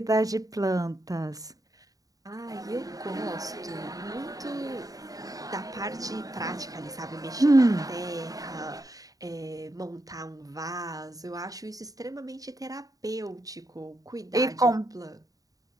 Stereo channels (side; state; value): left; late; 0.18 ms